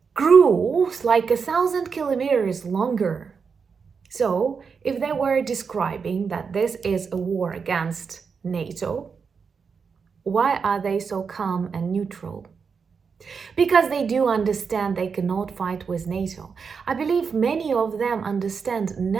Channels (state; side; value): quieter; left; 5.7 dB